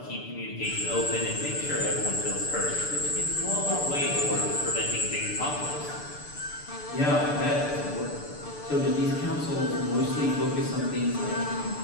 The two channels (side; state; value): right; late; 6.8 ms